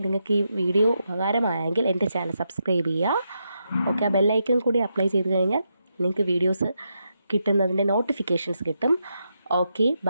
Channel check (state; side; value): inverted; both; correlation -0.83